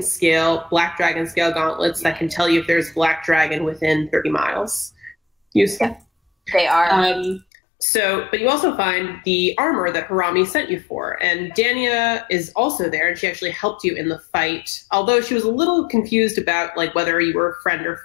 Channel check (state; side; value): drops out; right; at 7.5 s